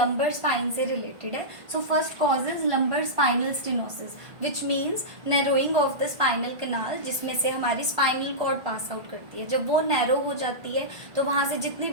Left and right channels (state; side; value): late; left; 1.5 ms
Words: स्पाइन से रिलेटेड है। So first cause is lumbar spinal stenosis, which means narrowing of the spinal canal, जिसमें से हमारी स्पाइनल कॉर्ड पास आउट करती है। जब वो नैरो हो जाती है तो वहाँ से जितनी